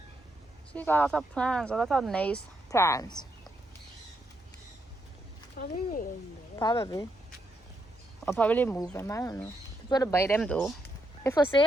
So you got a lot of plants, a lot of nice plants. probably in there. Probably. Or probably move them, I don't know. People to buy them though. They're for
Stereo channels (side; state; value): both; normal; correlation 0.79